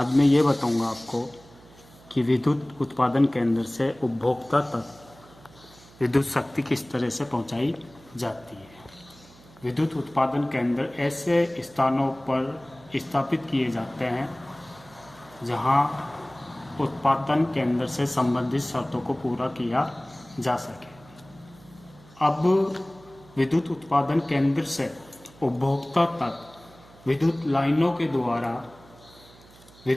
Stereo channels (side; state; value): right; noise; hum, 24 dB below the sound